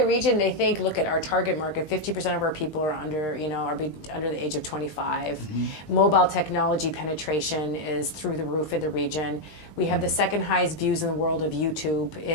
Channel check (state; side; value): late; right; 20 ms